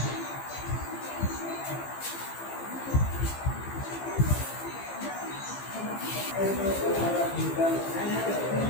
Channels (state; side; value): late; right; 15 ms